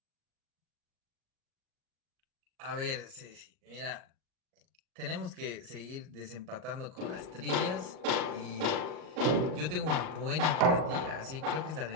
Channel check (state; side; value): late; left; 39 ms